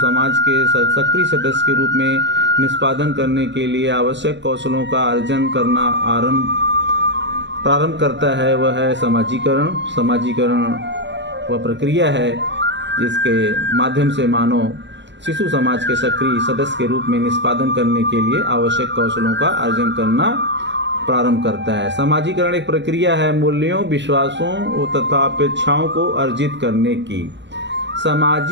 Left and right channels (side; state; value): left; late; 0.52 ms